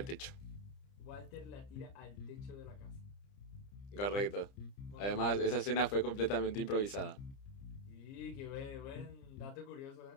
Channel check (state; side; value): late; right; 30 ms